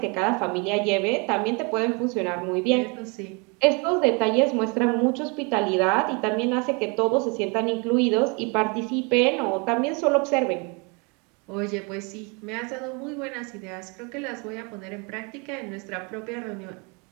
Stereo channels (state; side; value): quieter; left; 31.8 dB